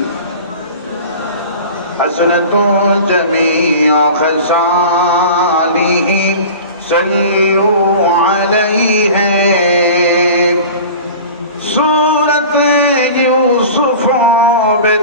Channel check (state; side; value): inverted; both; correlation -0.37